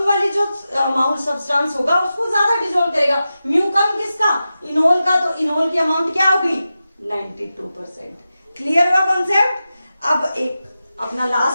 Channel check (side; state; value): both; inverted; correlation -0.92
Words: वाली जो अमाउंट सब्सटेंस होगा उसको ज्यादा डिसॉल्व करेगा। म्यू कम किसका, इनोल का। तो इनोल की अमाउंट क्या होगी, 92%। क्लियर हुआ कॉन्सेप्ट। अब एक अपना